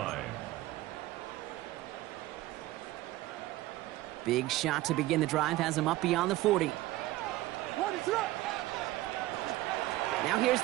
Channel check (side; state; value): left; quieter; 17.1 dB